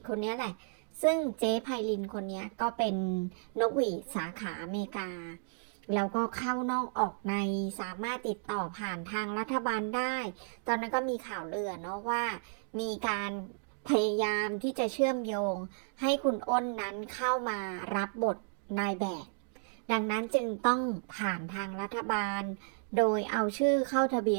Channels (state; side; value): silent; left; digital silence